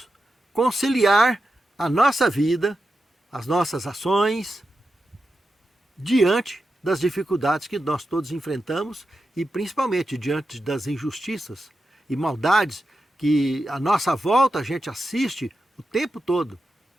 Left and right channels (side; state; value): both; normal; correlation 0.89